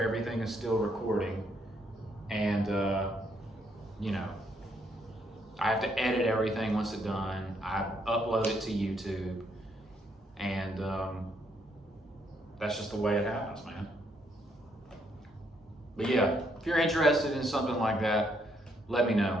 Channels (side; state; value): both; normal; correlation 0.73